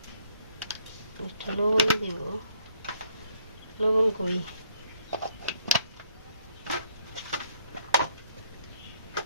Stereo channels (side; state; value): both; inverted; correlation -0.66